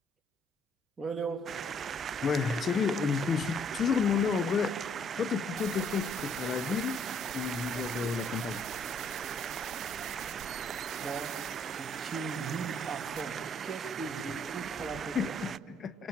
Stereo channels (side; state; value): both; normal; correlation 0.65